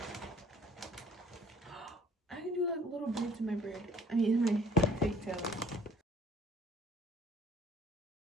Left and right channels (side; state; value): both; normal; correlation 0.55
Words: I can do like little beads in my braid. I mean, in my pigtails.